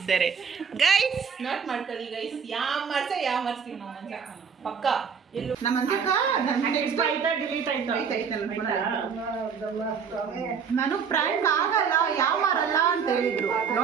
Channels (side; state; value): left; quieter; 6.5 dB